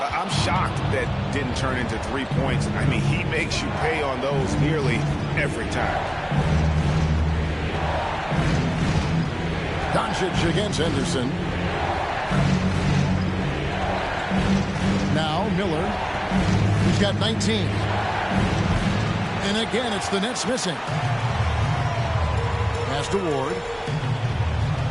shocked that didn't turn into 3 points. I mean, he makes you pay on those nearly every time. Doncic against Henderson. Now Miller. He's got 19. And again, it's the Nets missing. Pass to Ward.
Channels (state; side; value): identical; both; correlation 1.00